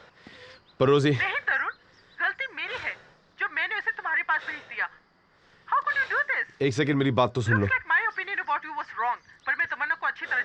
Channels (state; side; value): identical; both; correlation 1.00